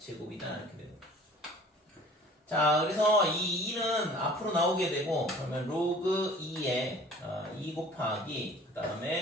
이렇게 되는 거야. 자, 그래서 이 2는 앞으로 나오게 되고 그러면 로그 2의 2 곱하기 그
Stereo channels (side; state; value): both; normal; correlation 0.49